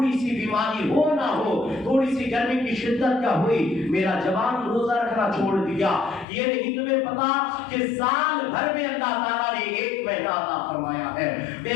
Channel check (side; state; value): right; drops out; at 6.2 s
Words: سی بیماری ہو نہ ہو، تھوڑی سی گرمی کی شدت کا ہوئی، میرا جوان روزہ رکھنا چھوڑ دیا۔ یہ نہیں تمہیں پتا کہ سال بھر میں اللہ تعالیٰ نے ایک مہینہ عطا فرمایا ہے،